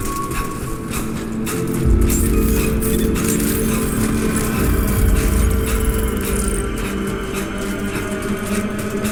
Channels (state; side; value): identical; both; correlation 1.00